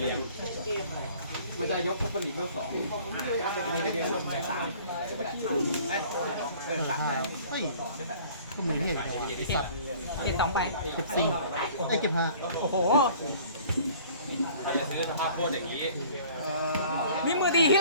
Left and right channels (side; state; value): both; inverted; correlation -0.51